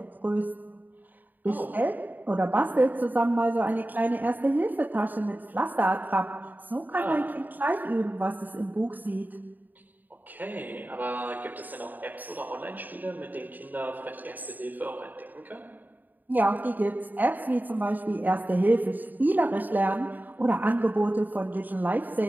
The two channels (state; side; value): late; left; 0.086 ms